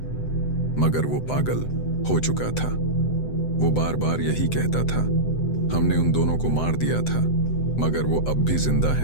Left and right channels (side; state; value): right; late; 7.9 ms